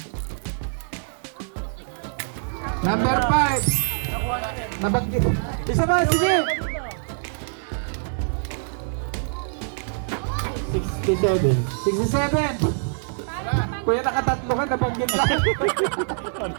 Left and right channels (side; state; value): left; silent; digital silence